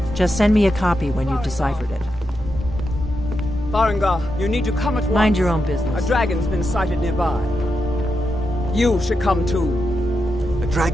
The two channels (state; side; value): normal; both; correlation 0.86